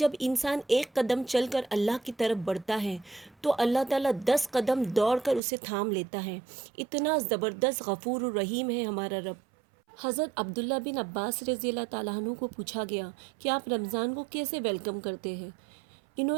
انسان ایک قدم چل کر اللہ کی طرف بڑھتا ہے تو اللہ تعالیٰ 10 قدم دوڑ کر اسے تھام لیتا ہے۔ اتنا زبردست غفور الرحیم ہے ہمارا رب۔ حضرت عبداللہ بن عباس رضی اللہ تعالیٰ عنہ کو پوچھا گیا کہ آپ رمضان کو کیسے ویلکم کرتے ہیں؟ انہوں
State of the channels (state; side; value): drops out; left; at 5.4 s